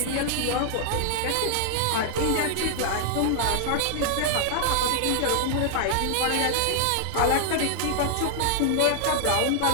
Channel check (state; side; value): different; both; correlation 0.00